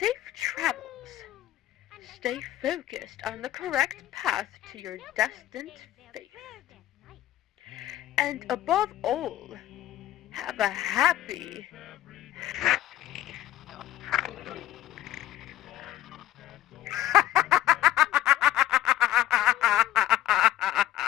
travels. And I Stay focused on the correct path to your destined fate. And above all, have a happy,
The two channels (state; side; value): quieter; right; 13.5 dB